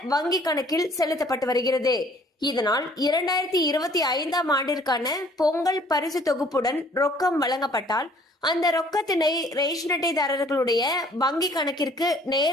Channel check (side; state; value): both; normal; correlation 0.57